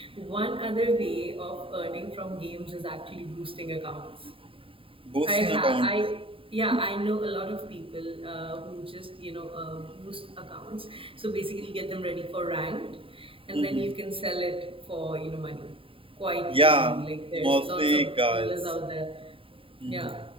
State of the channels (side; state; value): left; late; 0.26 ms